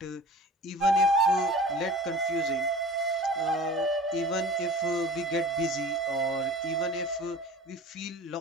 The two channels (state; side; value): normal; both; correlation 0.40